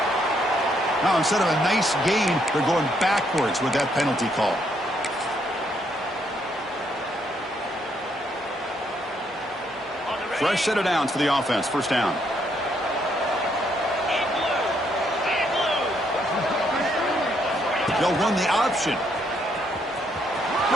Now, instead of a nice gain, they're going backwards with that penalty call. Fresh set of downs for the offense. First down. They'll run the option.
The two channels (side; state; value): both; normal; correlation 0.73